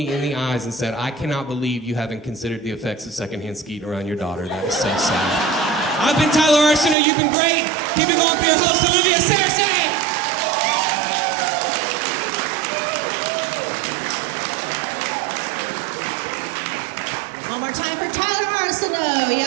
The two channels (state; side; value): drops out; left; at 7.0 s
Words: in the eyes and said, I cannot believe you haven't considered the effects of secondhand skeet around your daughter. That is so sad. I've been Tyler Arceneaux. You've been great. Keep it going for your host, Olivia Cersei. One more time for Tyler Arceneaux,